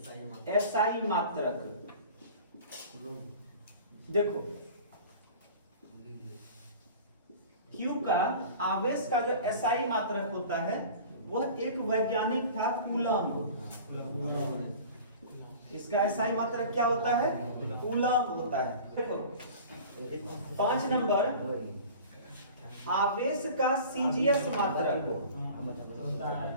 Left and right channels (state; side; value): inverted; both; correlation -0.41